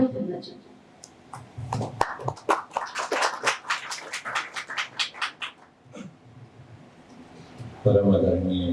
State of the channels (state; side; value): identical; both; correlation 1.00